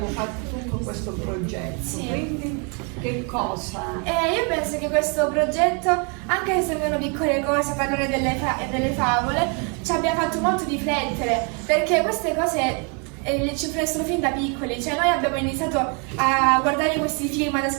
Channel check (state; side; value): quieter; left; 35.6 dB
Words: fatto tutto questo progetto, Sì. quindi che cosa? Io penso che questo progetto, anche se sembrano piccole cose, parlare delle favole, ci abbia fatto molto riflettere, perché queste cose ci influenzano fin da piccoli, cioè noi abbiamo iniziato a guardare questi film, ad